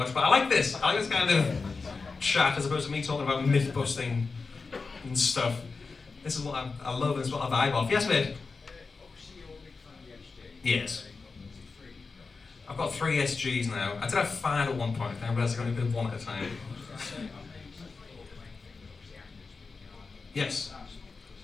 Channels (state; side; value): quieter; right; 4.4 dB